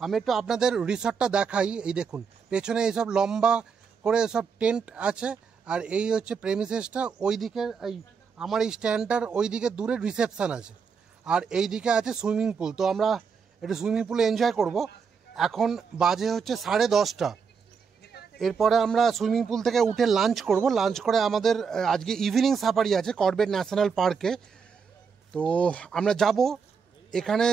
একটু আপনাদের রিসর্টটা দেখাই। এই দেখুন পেছনে এইসব লম্বা করে সব টেন্ট আছে, আর এই হচ্ছে প্রেমিসেসটা। ওই দিকে এই আমার এই স্ট্যান্ডটার ওই দিকে দূরে রিসেপশন আছে, আর এই দিকে আছে সুইমিং পুল। তো আমরা একটু সুইমিং পুলে এনজয় করব। এখন বাজে হচ্ছে 10:30। এরপরে আমরা সুইমিং পুল থেকে উঠে লাঞ্চ করব। লাঞ্চ করে আমাদের আজকে ইভিনিং সাফারি আছে করবেট ন্যাশনাল পার্কে। তো আমরা যাব, এখানে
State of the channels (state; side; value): quieter; left; 5.9 dB